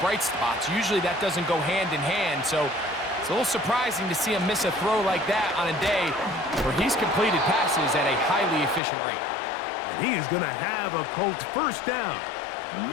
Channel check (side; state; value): right; drops out; at 8.8 s